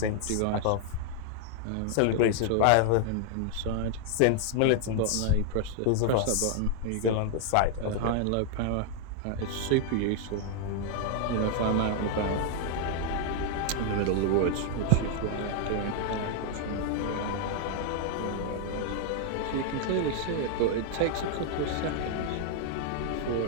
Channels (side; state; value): both; different; correlation 0.00